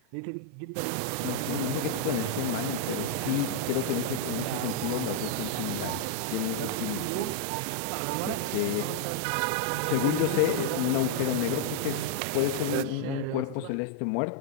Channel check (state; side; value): different; both; correlation -0.01